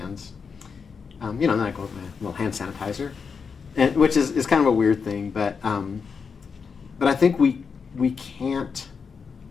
You know, and then I go with my little hand sanitizer, which is kind of a weird thing, but I think we can't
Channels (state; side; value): quieter; right; 5.7 dB